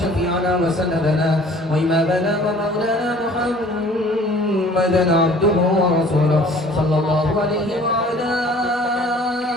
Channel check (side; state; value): both; normal; correlation 0.51